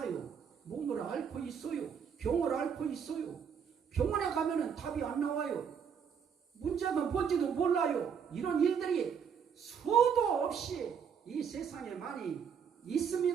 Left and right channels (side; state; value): left; quieter; 7.2 dB